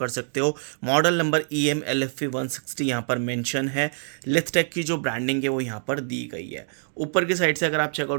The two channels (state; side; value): silent; left; digital silence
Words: सकते हो। मॉडल नंबर EM-LFP 160 यहाँ पर मेंशन है। लिथटेक की जो ब्रांडिंग है वो यहाँ पर दी गई है। ऊपर की साइड से अगर आप